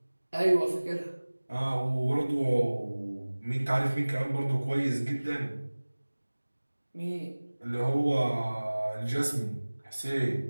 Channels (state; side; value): inverted; both; correlation -1.00